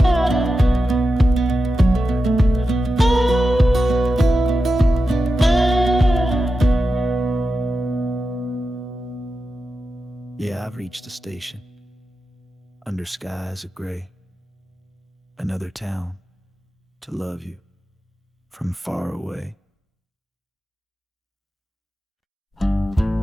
Yeah, I've reached the station, under skies of gray. Another town to love you from far away. The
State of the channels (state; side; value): normal; both; correlation 0.91